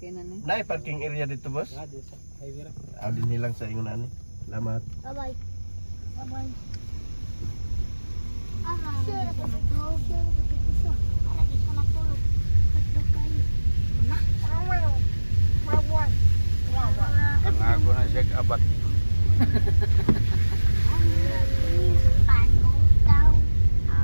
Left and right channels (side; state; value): both; inverted; correlation -1.00